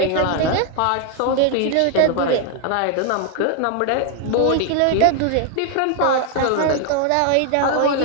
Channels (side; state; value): both; different; correlation 0.00